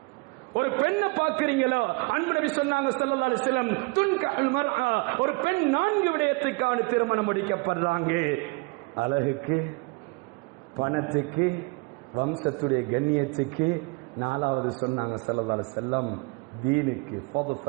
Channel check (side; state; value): left; quieter; 28.6 dB